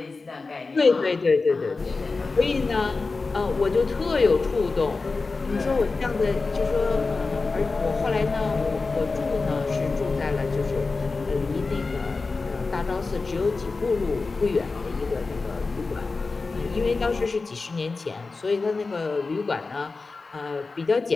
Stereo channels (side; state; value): right; quieter; 3.9 dB